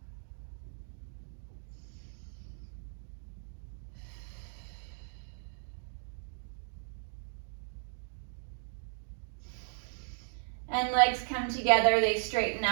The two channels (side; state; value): left; silent; digital silence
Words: And legs come together, they straighten